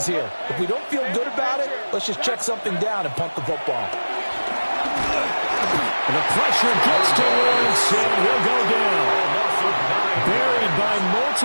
here. If we don't feel good about it, let's just check something down and punt the football. And the pressure gets to Lawrence, and he'll go down. Buried by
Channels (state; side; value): inverted; both; correlation -1.00